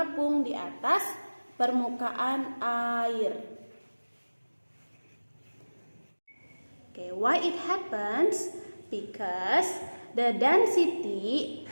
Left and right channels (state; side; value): inverted; both; correlation -1.00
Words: di atas permukaan air. Okay, why it happens? Because the density